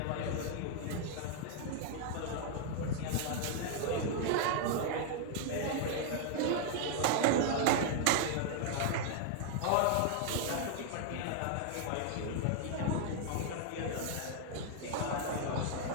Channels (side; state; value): both; different; correlation 0.00